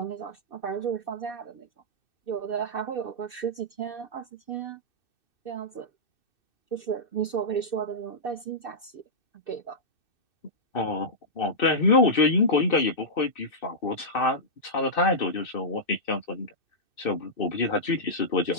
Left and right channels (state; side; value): late; right; 2.6 ms